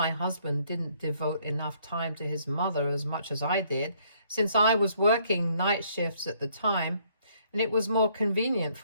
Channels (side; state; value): both; inverted; correlation -0.66